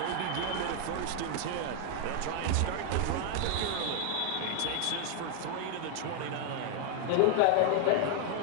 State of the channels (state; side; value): different; both; correlation 0.00